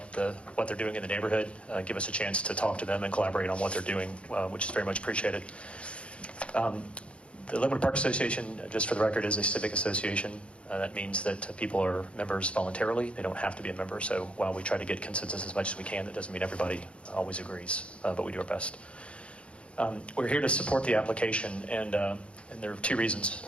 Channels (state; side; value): late; right; 0.059 ms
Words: what they're doing in the neighborhood, give us a chance to talk to them and collaborate on what they're doing, which is very much appreciated. The Linwood Park Association, just for the record, is a civic association. That means that people are members voluntarily. They don't have to be a member. So while we try to get consensus as much as we can, that doesn't mean everybody always agrees, but we do our best. We're here to support the application, and there are two reasons